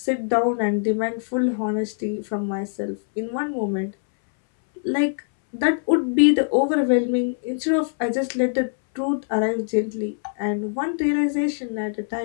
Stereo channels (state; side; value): silent; right; 62 dB below the other